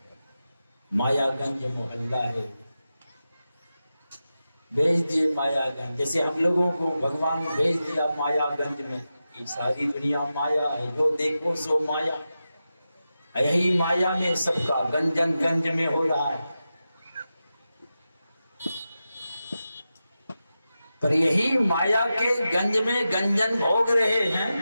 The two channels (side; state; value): both; inverted; correlation -0.92